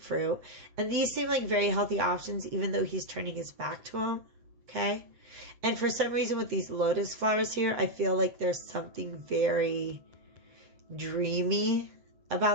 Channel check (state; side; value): late; left; 7.9 ms